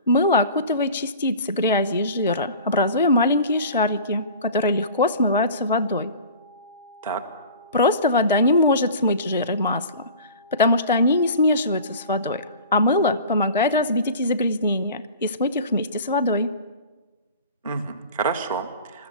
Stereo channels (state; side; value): inverted; both; correlation -0.39